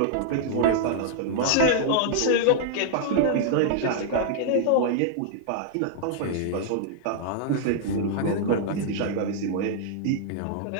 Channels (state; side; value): different; both; correlation -0.01